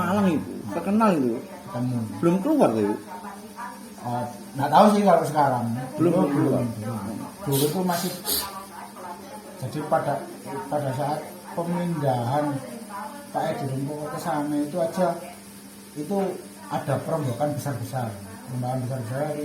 itu, terkenal itu. ketemu. Belum keluar tuh, Ibu? Nggak tahu sih kalau sekarang. Belum. Dulu itu masih, jadi pada saat pemindahan Pak Edi Rumpoko ke sana itu aja itu ada perombakan besar-besar. Perombakan besar-besar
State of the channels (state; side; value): identical; both; correlation 1.00